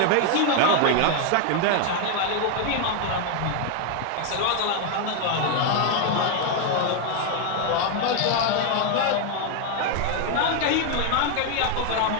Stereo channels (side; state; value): both; different; correlation 0.01